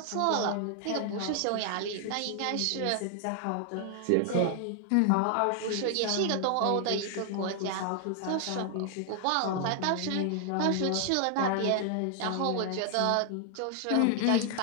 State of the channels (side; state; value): both; different; correlation 0.00